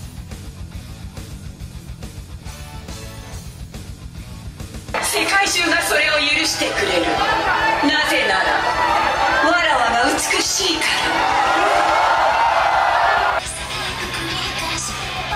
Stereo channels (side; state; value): both; identical; correlation 1.00